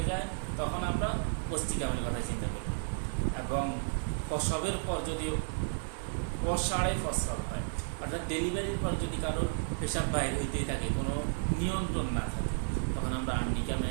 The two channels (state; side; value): silent; left; digital silence